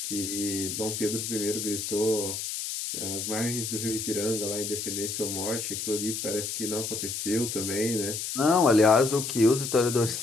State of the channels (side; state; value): left; noise; hiss, 4 dB below the sound